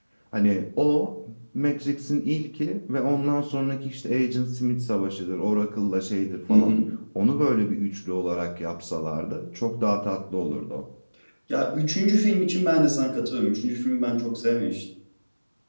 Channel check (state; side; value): inverted; both; correlation -1.00